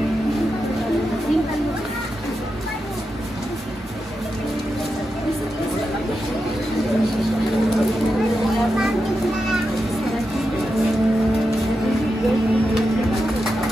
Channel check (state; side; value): normal; both; correlation 0.88